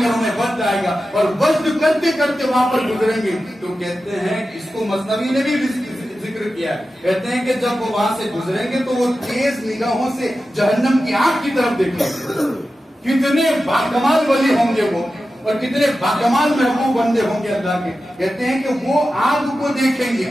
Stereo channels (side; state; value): both; normal; correlation 0.93